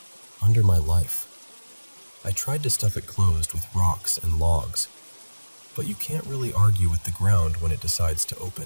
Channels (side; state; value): both; inverted; correlation -1.00